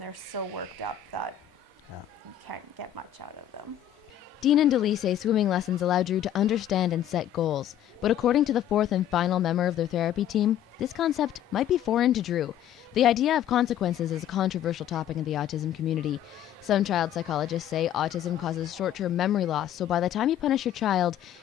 they're so worked up that you can't get much out of them. Dean and Delee say swimming lessons allow Drew to understand and set goals. But according to the fourth and final member of their therapy team, this concept might be foreign to Drew. The idea of consequences is a controversial topic in the autism community. Some child psychologists say autism causes short-term memory loss, so by the time you punish your child,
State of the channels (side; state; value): right; quieter; 11.0 dB